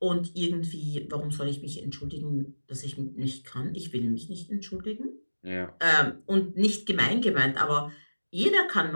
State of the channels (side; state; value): both; inverted; correlation -1.00